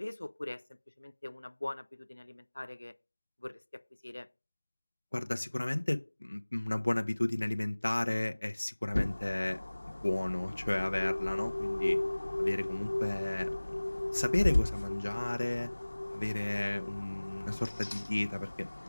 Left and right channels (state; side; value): inverted; both; correlation -1.00